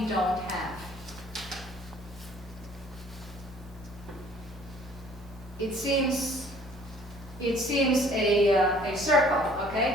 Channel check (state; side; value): normal; both; correlation 0.55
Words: have. It seems a circle,